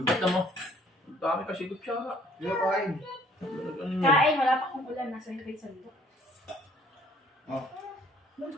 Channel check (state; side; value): normal; both; correlation 0.59